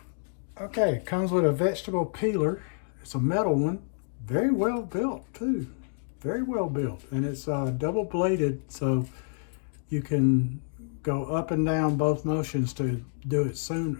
Okay, it comes with a vegetable peeler. It's a metal one, very well built too, very well built. And it's double bladed, so you can go up and down both motions to do it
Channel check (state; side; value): silent; right; digital silence